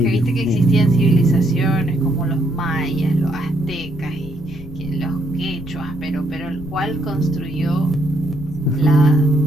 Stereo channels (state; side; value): noise; left; rumble, 15 dB below the sound